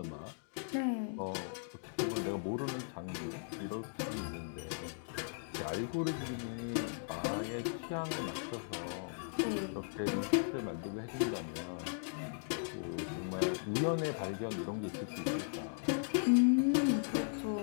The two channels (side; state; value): right; silent; digital silence